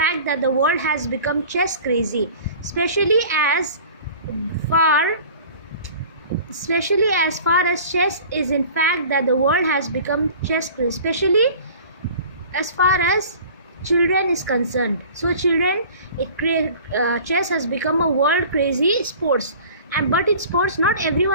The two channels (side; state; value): both; inverted; correlation -0.44